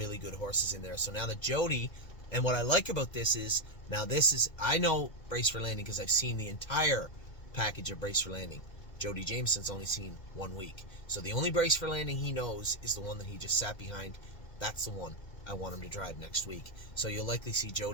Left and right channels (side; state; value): right; late; 2.1 ms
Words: good horses in there. So now that Jody... And what I like about this is, I know Brace for Landing because I've seen the entire package of Brace for Landing. Jody Jameson's only seen 1 week. So the only Brace for Landing he knows is the one that he just sat behind. That's the one I want him to drive next week. So you'll likely see